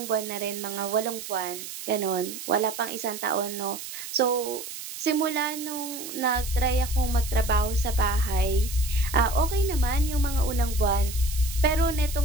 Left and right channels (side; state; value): right; noise; hiss, 10 dB below the sound